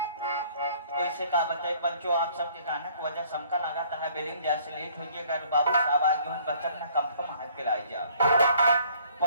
का बताए बच्चों आप सबके गाना को वजह समका लगाता है बेलिंग जैसे लेट हो गया अगर बाबू साहब आगे उन बच्चों ने कंफर्म हाथ के लाई जा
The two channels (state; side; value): inverted; both; correlation -0.59